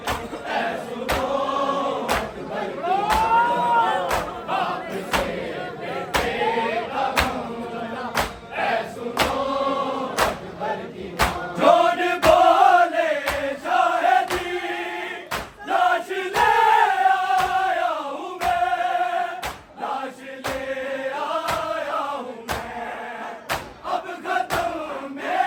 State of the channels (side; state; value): both; identical; correlation 1.00